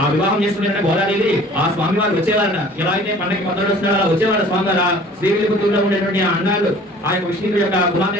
ఆ వివాహం చేసుకునే గోదావరి ఆ స్వామి వారు వచ్చేవారట. ఎలా అయితే పండగకి పద్దడు వస్తున్నారో అలా వచ్చేవారు స్వామి వారు. ఆ శ్రీవిల్లిపుత్తూరులో ఉండేటువంటి ఆ అన్నాలు, ఆ యొక్క విష్ణువు యొక్క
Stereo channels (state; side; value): normal; both; correlation 0.49